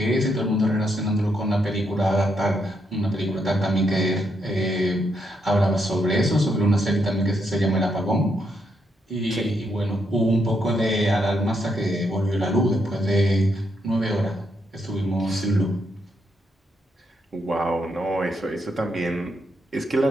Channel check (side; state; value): both; normal; correlation 0.78